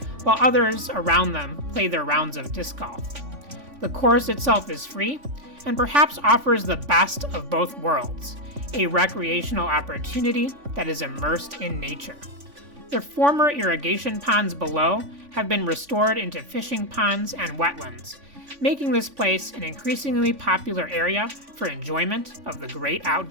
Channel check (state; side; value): late; left; 3.5 ms